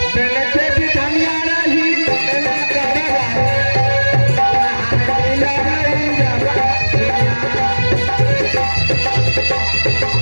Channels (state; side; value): inverted; both; correlation -1.00